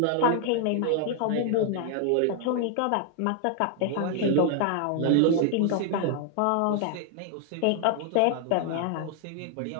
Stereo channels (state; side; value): different; both; correlation 0.00